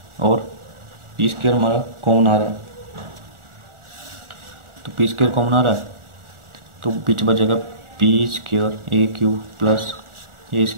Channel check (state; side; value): late; left; 1.4 ms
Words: और पी स्क्वायर हमारा कॉमन आ रहा है, तो पी स्क्वायर कॉमन आ रहा है तो बीच बचेगा P square A cube plus A